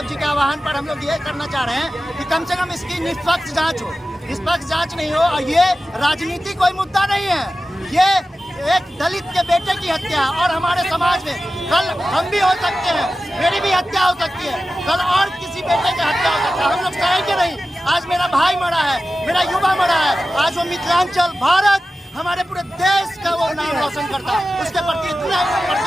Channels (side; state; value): both; normal; correlation 0.94